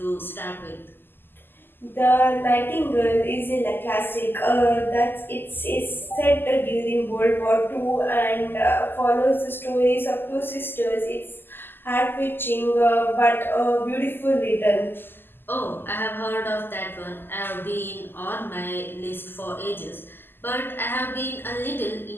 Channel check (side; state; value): right; late; 0.098 ms